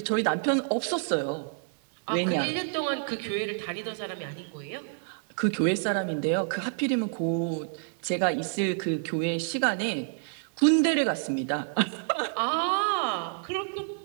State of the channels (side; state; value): left; silent; digital silence